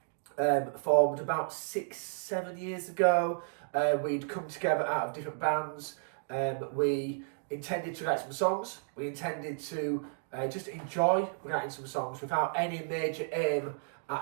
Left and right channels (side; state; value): left; silent; digital silence